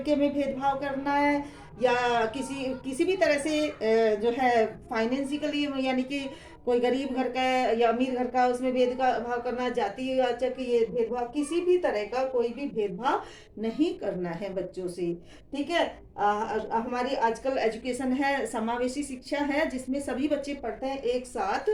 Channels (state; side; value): identical; both; correlation 1.00